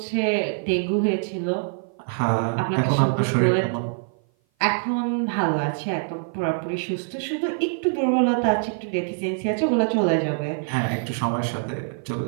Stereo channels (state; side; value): silent; left; 56 dB below the other